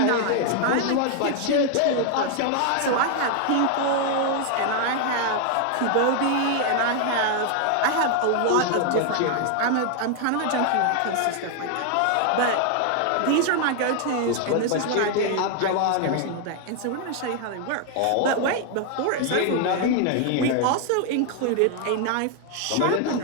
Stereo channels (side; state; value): both; different; correlation 0.00